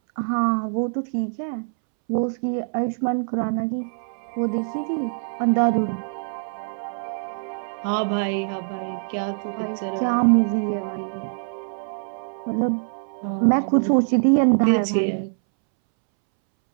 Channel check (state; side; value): silent; left; 63 dB below the other